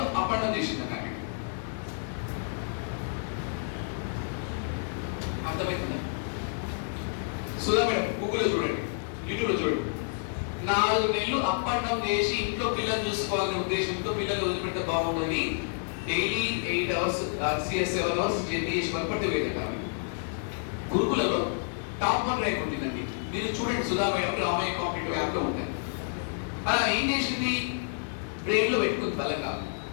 అప్ అండ్ డౌన్ చేసిందంట. అర్థమవుతుందా? సుధా మేడం గూగుల్లో చూడండి, యూట్యూబ్లో చూడండి. 4 నెలలు అప్ అండ్ డౌన్ చేసి ఇంట్లో పిల్లలు చూసుకోవాలనే ఉద్దేశంతో పిల్లలు వదిలిపెడితే బాగుండని డైలీ 8 hours 7 hours జర్నీ చేసి వరపట్టి వెళ్ళారు. గురుకులలో టాప్ 1 ర్యాంక్ ఉంటుందండి. మీరు చూడండి, సుధా మేడం ఆమె కాంపిటేటివ్ యాప్లో ఉంటుంది. అలా ఏం చేసింది, బ్రెయిన్లో పెట్టుకుంది బలంగా,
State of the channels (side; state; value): right; silent; digital silence